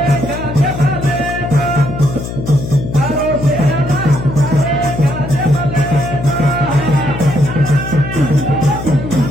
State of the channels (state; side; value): noise; left; hum, 7 dB below the sound